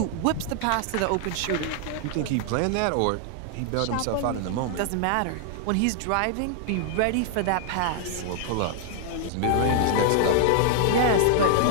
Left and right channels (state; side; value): different; both; correlation 0.00